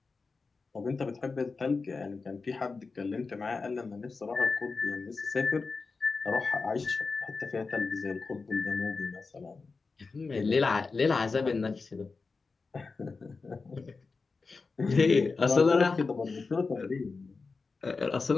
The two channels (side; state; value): right; quieter; 4.3 dB